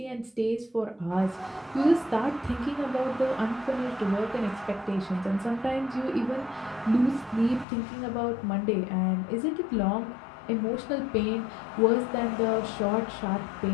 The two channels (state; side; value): drops out; right; at 7.7 s